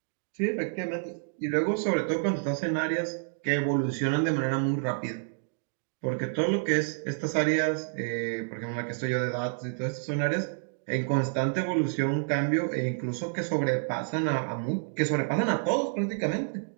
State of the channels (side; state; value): left; silent; digital silence